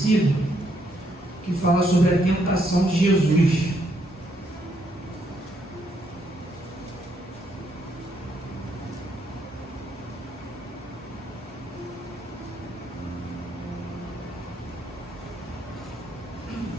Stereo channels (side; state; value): both; normal; correlation 0.74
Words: que fala sobre a tentação de Jesus.